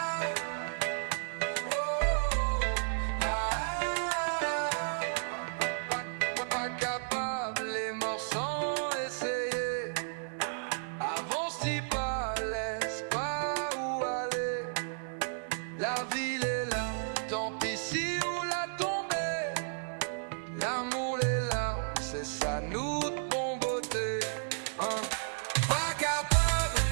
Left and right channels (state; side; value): silent; left; digital silence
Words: Pas capable, les morts sans essayer. Avance, dis pas, laisse pas où aller. La ville est là, tant pis si où la tomber. L'amour, les larmes, c'est ça nous de bon beauté. Hein? Pas capable,